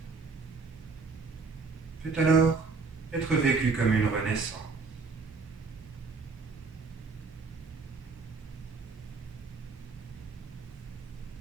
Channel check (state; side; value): quieter; left; 4.5 dB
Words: peut alors être vécue comme une renaissance.